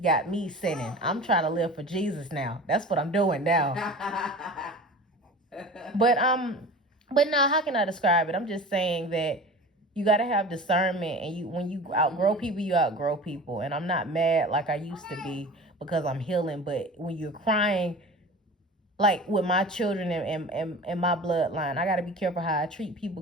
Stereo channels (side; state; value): both; normal; correlation 0.36